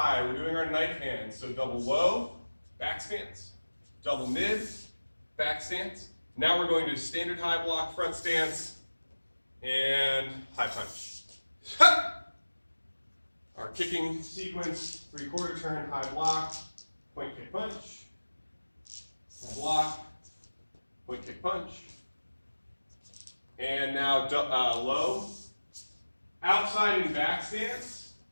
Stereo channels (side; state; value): both; inverted; correlation -1.00